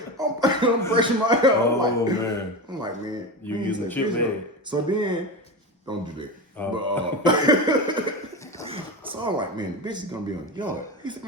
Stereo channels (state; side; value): normal; both; correlation 0.22